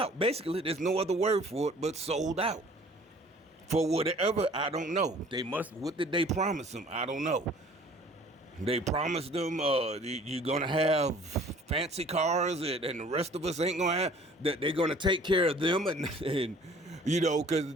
Basically, there's no other word for it but sold out. For whatever, I don't know. What did they promise them? I don't know. They promised them you're going to have fancy cars and the rest of us ain't going to have, that they're going to take care of them and because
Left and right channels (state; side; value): normal; both; correlation 0.51